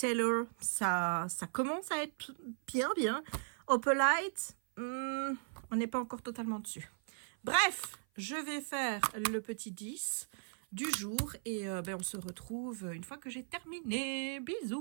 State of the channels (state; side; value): silent; left; 53 dB below the other